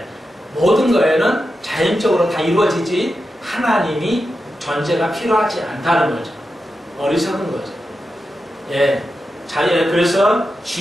모든 거에는 자연적으로 다 이루어지지 하나님이 존재가 필요하지 않다는 거죠. 어리석은 거죠. 예, 그래서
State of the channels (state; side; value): normal; both; correlation 0.89